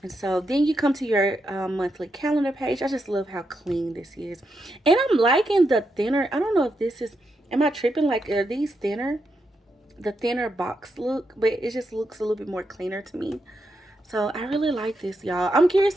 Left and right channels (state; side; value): normal; both; correlation 0.83